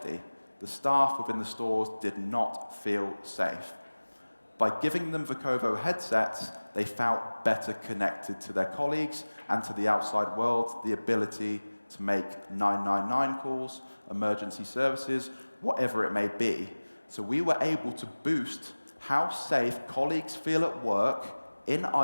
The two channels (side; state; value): both; inverted; correlation -1.00